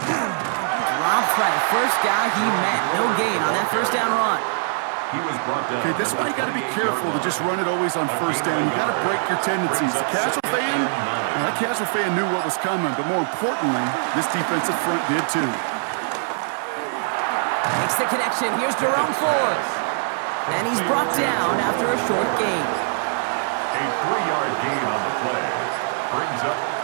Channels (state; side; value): silent; left; 63 dB below the other